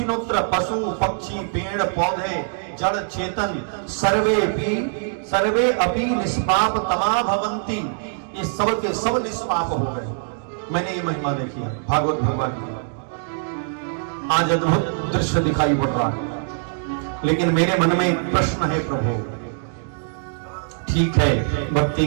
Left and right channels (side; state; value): left; silent; digital silence